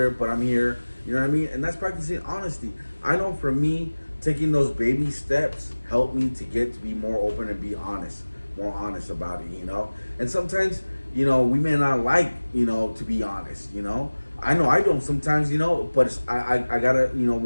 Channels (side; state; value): both; inverted; correlation -1.00